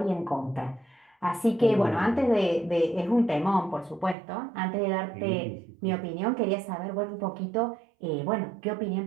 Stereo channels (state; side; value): drops out; left; at 4.2 s